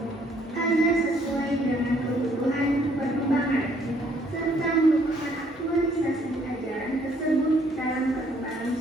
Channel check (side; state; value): both; normal; correlation 0.65